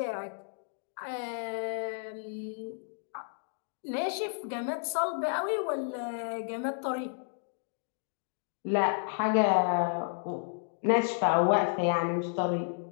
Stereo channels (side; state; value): right; silent; digital silence